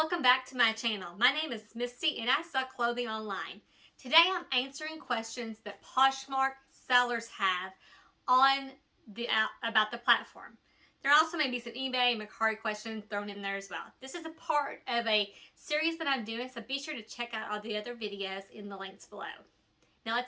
back to my channel. My name is Misty and I sell clothing online. Today I'm answering questions that Poshmark sellers have on about the platform. There also may be some eBay and Mercari questions thrown in there as well. This is a part of a series that I'm doing, so be sure to check out all the other videos in the links below. Now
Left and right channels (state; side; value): identical; both; correlation 1.00